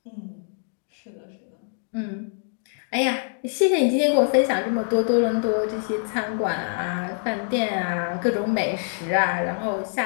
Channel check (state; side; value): silent; right; digital silence